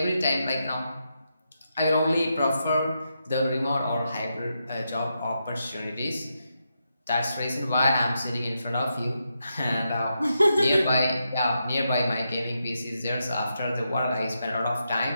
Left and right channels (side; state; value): both; inverted; correlation -0.84